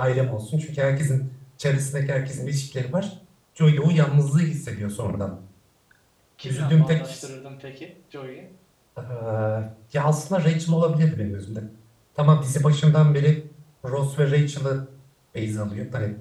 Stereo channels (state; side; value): identical; both; correlation 1.00